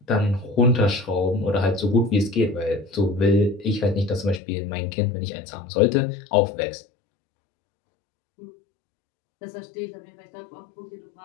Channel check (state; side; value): drops out; right; at 4.4 s